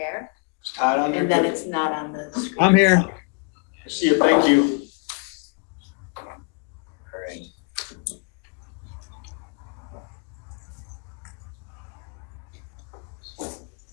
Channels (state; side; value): quieter; right; 33.8 dB